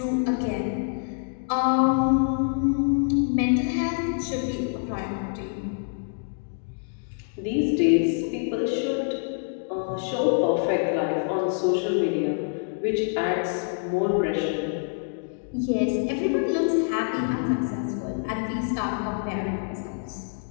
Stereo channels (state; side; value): silent; right; digital silence